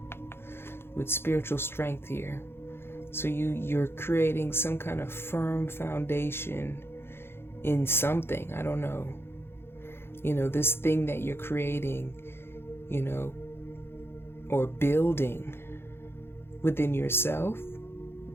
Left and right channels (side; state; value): right; late; 0.11 ms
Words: with spiritual strength here. So you're creating some kind of firm foundation in something. I don't know. This thing that you're creating, or building within yourself,